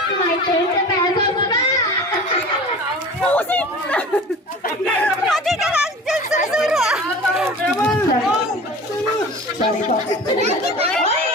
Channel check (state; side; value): normal; both; correlation 0.38